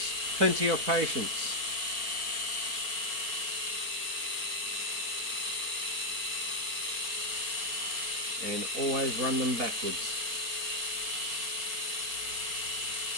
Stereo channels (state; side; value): late; left; 4.5 ms